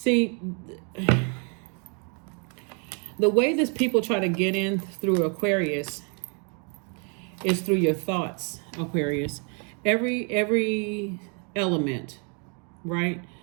the way that people try to get in through Aquarius is through your thoughts, Aquarius. Every element, right?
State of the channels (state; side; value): quieter; left; 37.6 dB